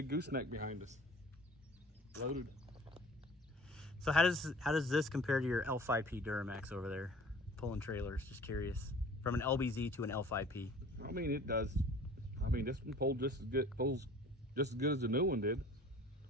gooseneck behind us. Loaded. So how does this compare to your L5P Duramax over there? Pulling trailers, just curious. From an LBZ to an L5P. I mean, it does I mean, this one pulls just as good as the new one did.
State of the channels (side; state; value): both; normal; correlation 0.48